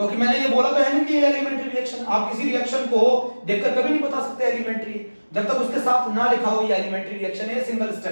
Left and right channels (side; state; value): both; inverted; correlation -1.00